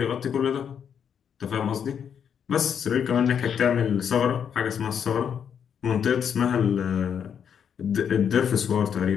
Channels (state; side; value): quieter; right; 7.9 dB